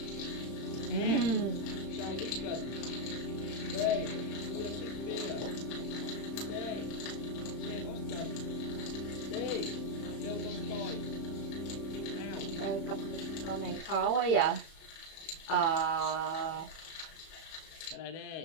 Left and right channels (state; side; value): late; right; 31 ms